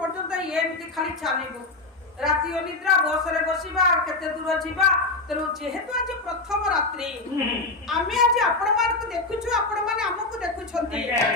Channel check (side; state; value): right; quieter; 3.2 dB